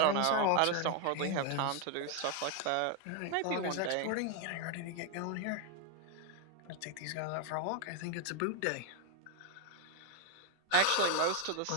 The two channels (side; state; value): both; different; correlation 0.01